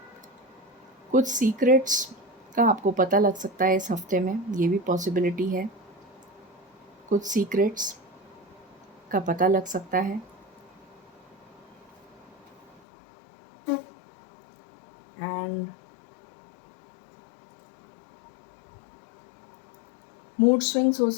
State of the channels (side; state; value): right; drops out; at 12.8 s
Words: कुछ सीक्रेट्स का आपको पता लग सकता है इस हफ्ते में, ये भी पॉसिबिलिटी है। कुछ सीक्रेट्स का पता लग सकता है। एंड मूड स्विंग्स हो